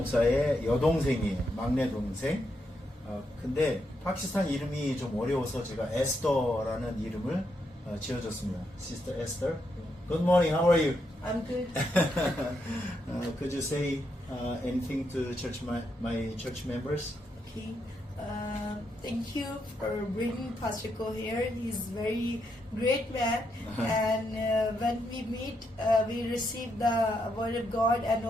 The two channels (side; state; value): both; normal; correlation 0.80